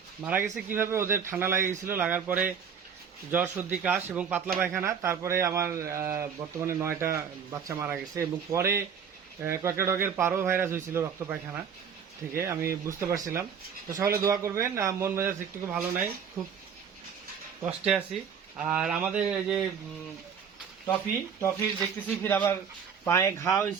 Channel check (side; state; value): left; quieter; 7.1 dB